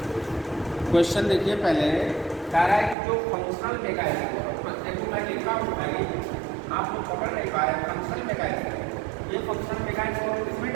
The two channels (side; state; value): left; drops out; at 3.0 s